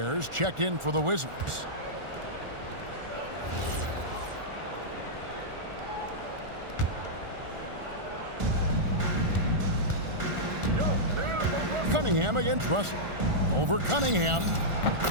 checked in for the Wizards. Cunningham against Russell. Over Cunningham.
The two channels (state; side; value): late; left; 1.4 ms